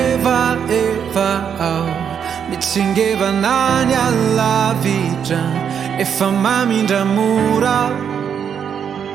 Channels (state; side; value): quieter; left; 7.8 dB